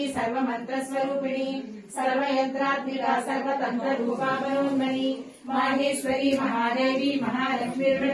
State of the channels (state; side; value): identical; both; correlation 1.00